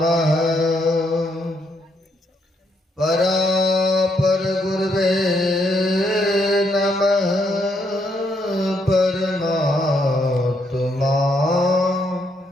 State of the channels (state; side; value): normal; both; correlation 0.75